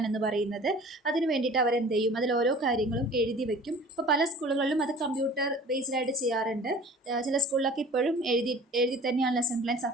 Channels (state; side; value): normal; both; correlation 0.45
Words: എന്ന് പറയുന്നത്. അതിന് വേണ്ടിയിട്ട് അവരെന്ത് ചെയ്യും, അതിൽ ഓരോ കാര്യങ്ങളും എഴുതി വെക്കും. ഇപ്പോൾ പല സ്കൂളുകളിലും അത് കമ്പ്യൂട്ടർ ബേസ്ഡായിട്ട് ചെയ്യാറുണ്ട്. ചില സ്കൂളിലൊക്കെ ഇപ്പോഴും എഴുതി തന്നെയാണ് ലെസൺ പ്ലാൻ